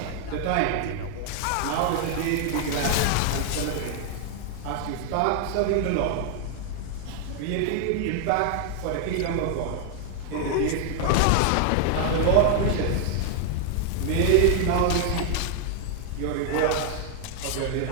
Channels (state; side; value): different; both; correlation 0.00